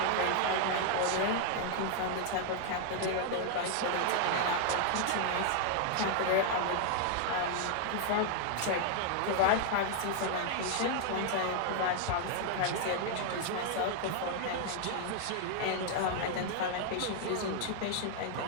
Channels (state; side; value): different; both; correlation 0.00